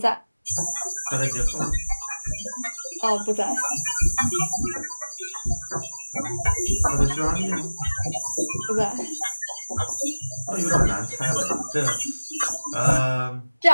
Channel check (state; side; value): inverted; both; correlation -1.00